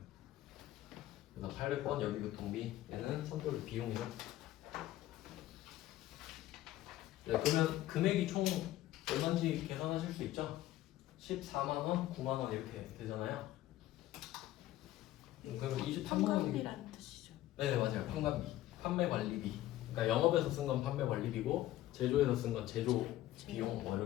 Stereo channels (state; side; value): quieter; right; 14.7 dB